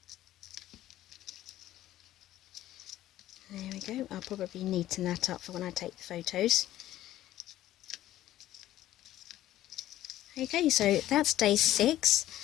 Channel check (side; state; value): right; quieter; 13.9 dB